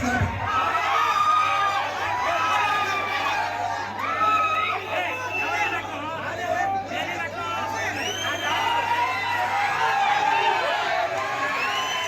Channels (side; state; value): both; identical; correlation 1.00